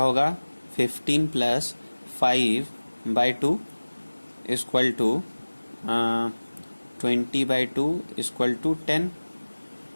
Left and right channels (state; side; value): inverted; both; correlation -1.00